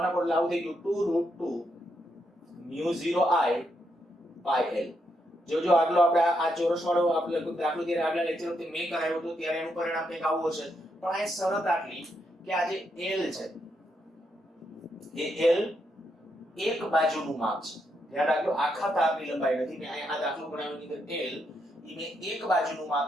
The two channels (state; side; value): normal; both; correlation 0.80